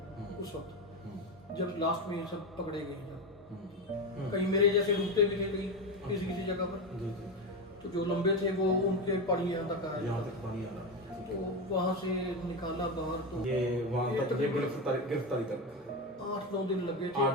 उस वक्त, जब लास्ट में सब पकड़े गए जब। कहीं मेरे जैसे रुकते भी थे कहीं किसी किसी जगह पर, तो जो लंबे थे वो उनके पानी यहाँ तक आया, यहाँ तक पानी आ रहा। तो वहाँ से निकाला बाहर। तो ये वहाँ तक ये गिरफ्तारी तक 8-9 दिन लगे थे।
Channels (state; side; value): normal; both; correlation 0.16